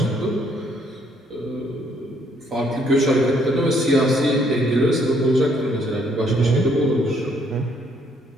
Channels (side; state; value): both; normal; correlation 0.67